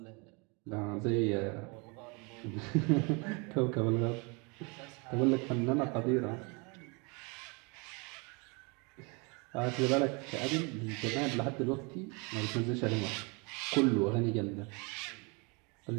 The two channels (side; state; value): left; quieter; 30.8 dB